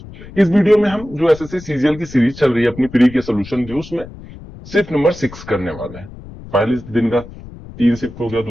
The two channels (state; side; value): noise; left; rumble, 16 dB below the sound